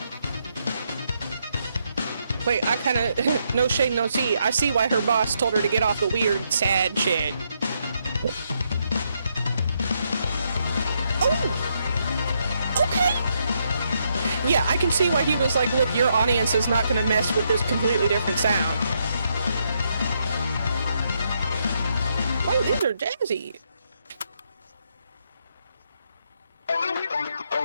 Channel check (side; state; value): both; inverted; correlation -0.77